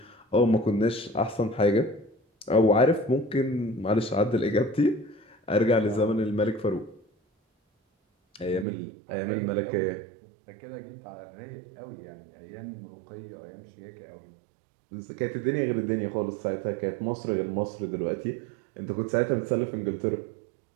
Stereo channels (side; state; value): left; drops out; at 8.7 s